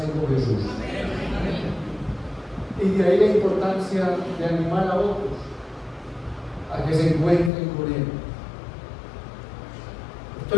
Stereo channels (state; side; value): drops out; right; at 7.5 s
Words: con Jesús. Y de ahí la importancia de animar a otros a que se encuentren con Él.